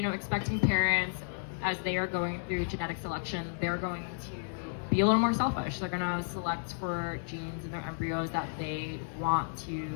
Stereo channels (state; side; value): silent; right; digital silence